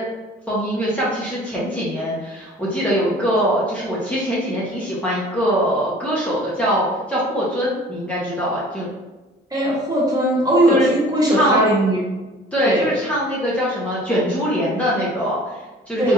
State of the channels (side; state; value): both; normal; correlation 0.48